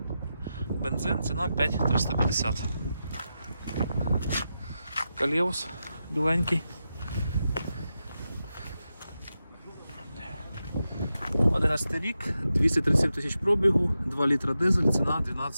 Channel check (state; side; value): inverted; both; correlation -0.89